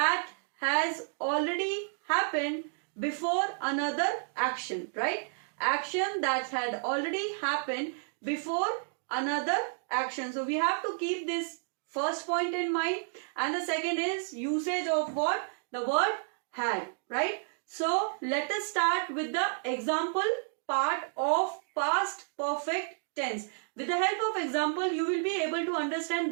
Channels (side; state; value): left; silent; digital silence